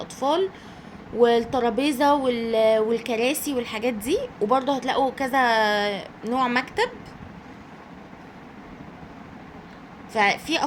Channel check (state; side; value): identical; both; correlation 1.00